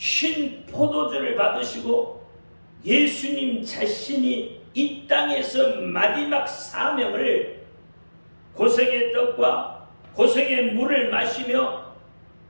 포도주를 받으시고 예수님 자신이 이 땅에서 마지막 사명을 고생의 떡과 고생의 물을 마시며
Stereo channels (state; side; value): inverted; both; correlation -1.00